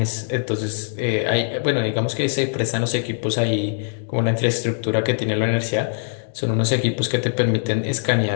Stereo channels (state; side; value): silent; right; digital silence